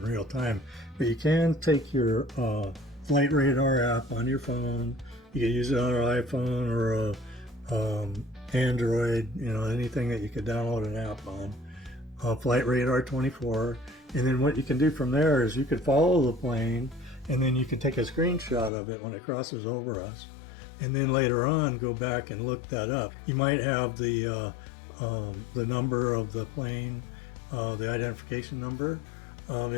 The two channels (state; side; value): drops out; right; at 18.7 s